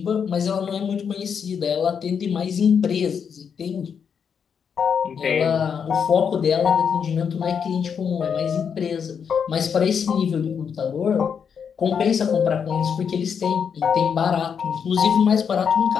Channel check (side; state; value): right; quieter; 7.0 dB